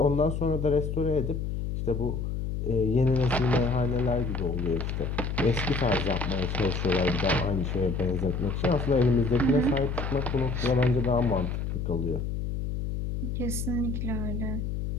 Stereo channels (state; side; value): noise; left; hum, 3 dB below the sound